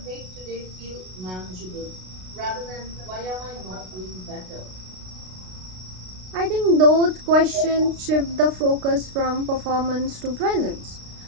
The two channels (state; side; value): late; left; 33 ms